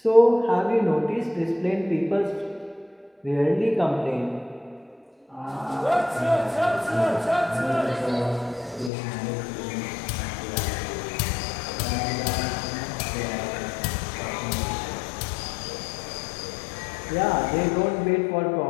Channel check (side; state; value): right; drops out; at 8.9 s